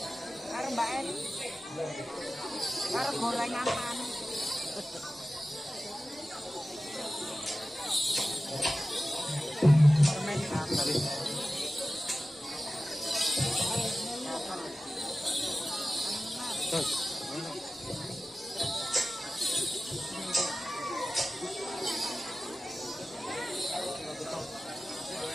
Karo Mbak Eni. Karo gorengan panas. Permen gatel.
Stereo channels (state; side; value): normal; both; correlation 0.95